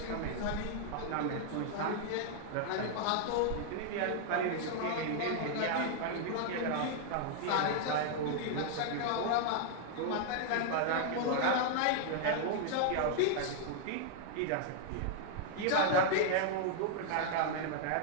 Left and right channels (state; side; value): different; both; correlation -0.01